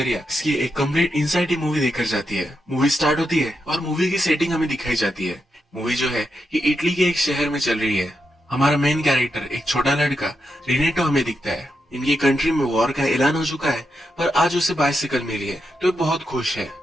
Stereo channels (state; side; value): normal; both; correlation 0.85